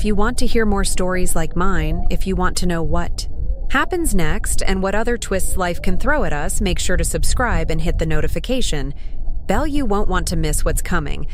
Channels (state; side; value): identical; both; correlation 1.00